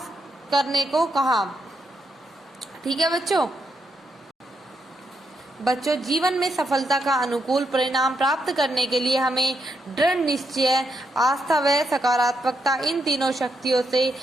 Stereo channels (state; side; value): normal; both; correlation 0.80